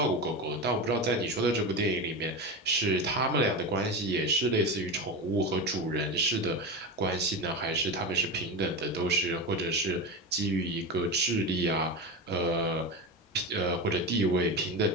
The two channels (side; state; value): both; normal; correlation 0.21